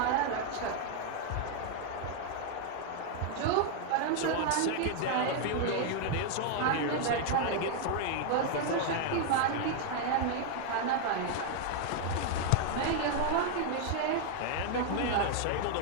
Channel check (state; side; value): different; both; correlation 0.00